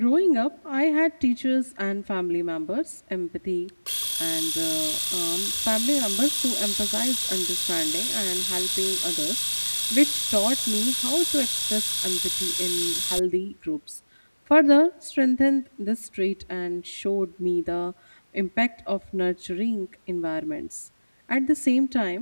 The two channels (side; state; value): both; inverted; correlation -1.00